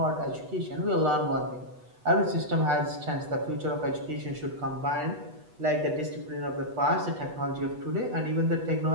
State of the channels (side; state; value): left; late; 8.1 ms